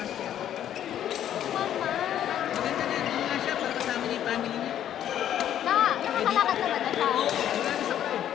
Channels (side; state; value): right; quieter; 10.8 dB